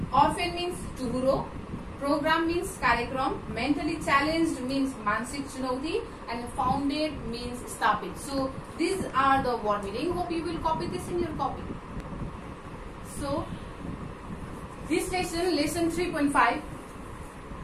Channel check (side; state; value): both; identical; correlation 1.00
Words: orphan means tuhuro, program means karyakram, mentally challenged means mansik chunauti, and founded means stapit. So these are the word meaning. Hope you will copy this in your copy. So this lesson 3.5